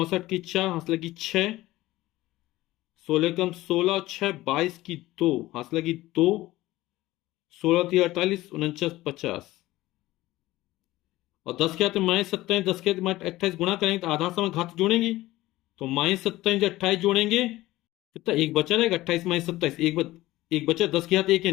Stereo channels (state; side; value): quieter; right; 17.3 dB